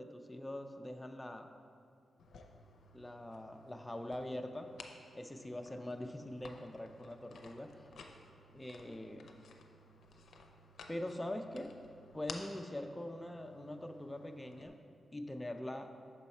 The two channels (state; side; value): normal; both; correlation 0.95